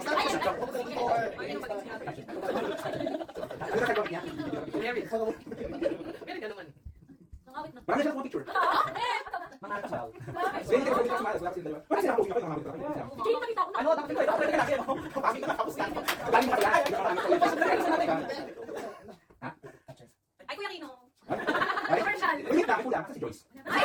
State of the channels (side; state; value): both; identical; correlation 1.00